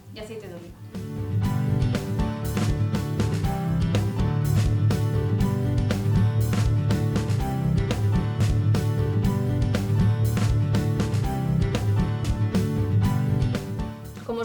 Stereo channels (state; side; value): identical; both; correlation 1.00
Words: y aceite de oliva. Como